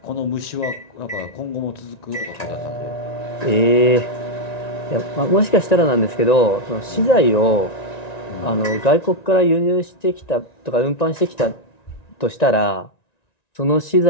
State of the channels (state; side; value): late; right; 1.9 ms